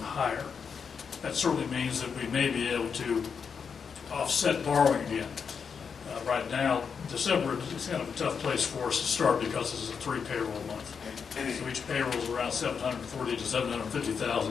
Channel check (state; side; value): quieter; right; 6.3 dB